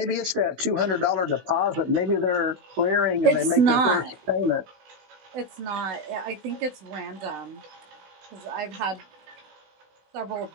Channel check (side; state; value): left; late; 16 ms